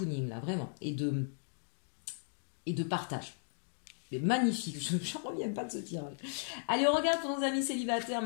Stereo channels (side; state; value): right; silent; digital silence